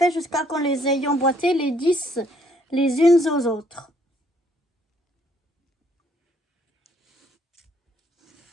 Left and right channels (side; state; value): both; normal; correlation 0.66